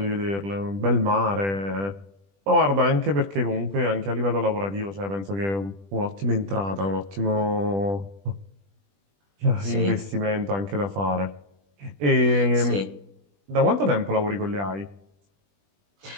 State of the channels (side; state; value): left; late; 20 ms